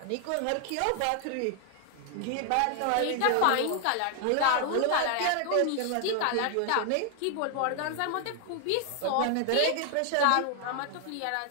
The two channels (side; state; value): both; different; correlation 0.00